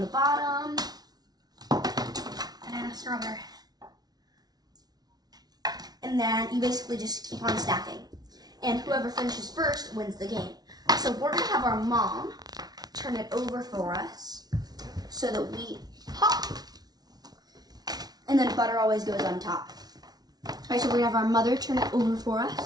bottom, Banana, strawberry. and then you basically just keep on stacking. And whoever finishes first wins the game. So we're going to have our mom turn it over for us so that we pop. And then butter always goes on top. All right, so we're going to have our mother turn it over for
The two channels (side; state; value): left; late; 0.19 ms